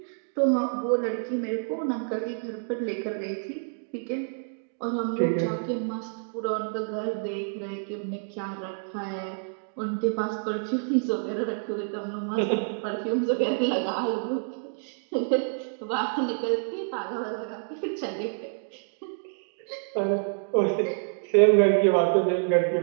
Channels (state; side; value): silent; left; digital silence